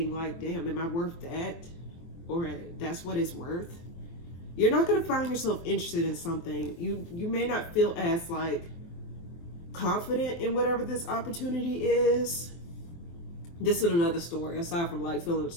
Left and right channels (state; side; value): late; right; 24 ms